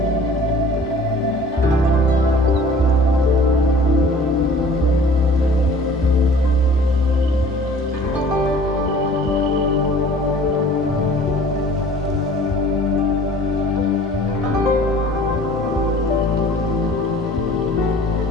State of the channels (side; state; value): both; normal; correlation 0.48